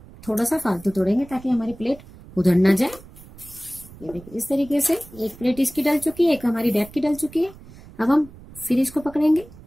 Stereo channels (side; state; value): right; noise; rumble, 20 dB below the sound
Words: थोड़ा सा फालतू तोड़ेंगे ताकि हमारी प्लेट उधर ना जाए। ये देखिए इस तरीके से एक प्लेट इसकी डल चुकी है, एक हमारी बैक की डल चुकी है। अब हम फिर इसको पकड़ेंगे,